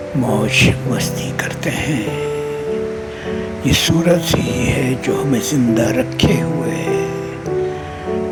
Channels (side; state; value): both; identical; correlation 1.00